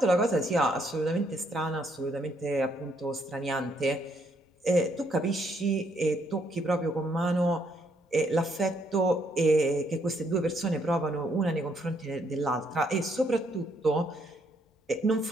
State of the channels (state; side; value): normal; both; correlation 0.71